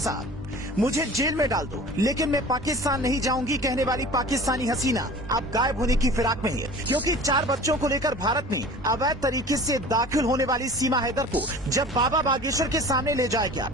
मुझे जेल में डाल दो लेकिन मैं पाकिस्तान नहीं जाऊंगी कहने वाली पाकिस्तानी हसीना अब गायब होने की फिराक में है, क्योंकि 4 बच्चों को लेकर भारत में अवैध तरीके से दाखिल होने वाली सीमा हैदर को जब बाबा बागेश्वर के सामने ले जाया गया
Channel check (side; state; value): both; normal; correlation 0.41